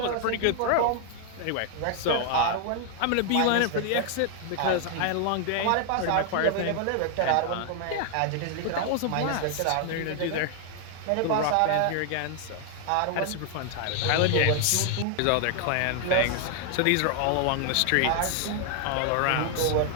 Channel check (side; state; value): both; different; correlation 0.00